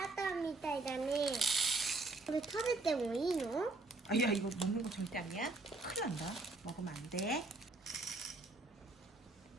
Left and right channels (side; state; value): left; quieter; 3.2 dB